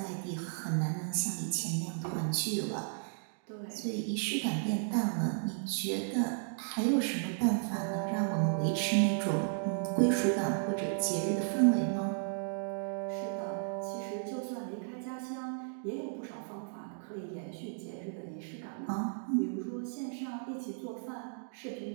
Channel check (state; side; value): silent; left; digital silence